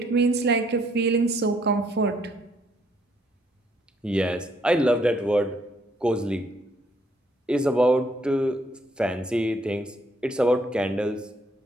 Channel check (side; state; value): both; normal; correlation 0.68